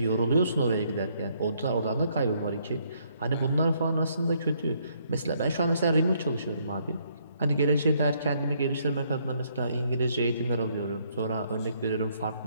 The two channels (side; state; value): both; inverted; correlation -0.70